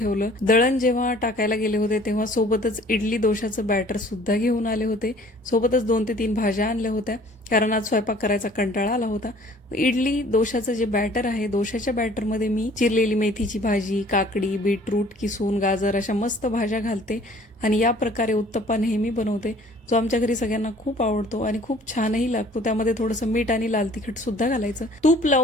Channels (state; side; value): normal; both; correlation 0.53